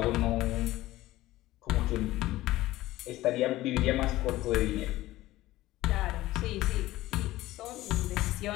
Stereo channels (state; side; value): quieter; right; 16.8 dB